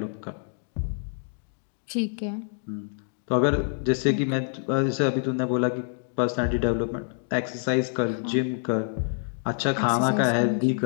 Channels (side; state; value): right; silent; 55 dB below the other